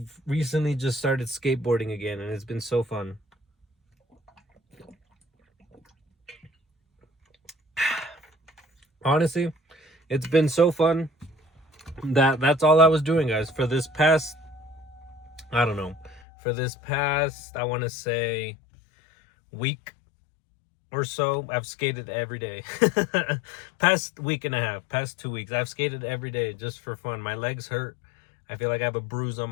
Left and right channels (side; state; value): right; drops out; at 16.2 s